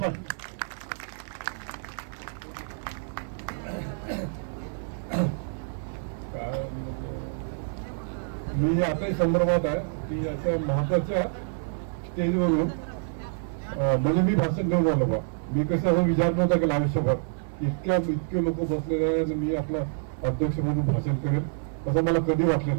मी आता संदर्भात आहे की अशा महत्वाच्या स्टेजवरून म्हणजे मी भाषण देऊन आलो बा. मी कसं विचार नव्हता केला आयुष्यभर इतके लोक बसलेले आहे आणि मी आपला अध्यक्ष म्हणून भाषण करेल असं मला कधी वाटलं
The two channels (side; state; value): left; silent; digital silence